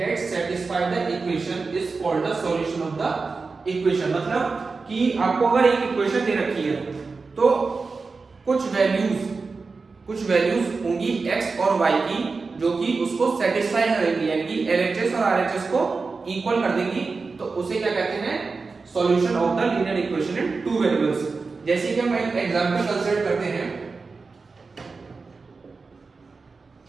satisfy the equation is called the solution of the equation। मतलब कि आपको अगर एक इक्वेशन दे रखी है तो कुछ वैल्यूज होंगी x और y की जो कि उसको सेटिस्फाई करेगी, यानी कि LHS और RHS को इक्वल कर देगी। तो उसे क्या कहते हैं? Solution of the linear equation in two variables. जैसे कि हम एक एग्जांपल कंसीडर करते हैं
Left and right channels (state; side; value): quieter; left; 4.3 dB